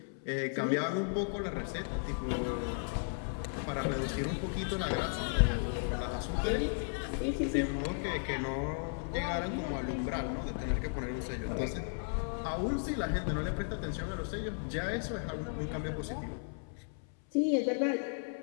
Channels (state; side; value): silent; right; 54 dB below the other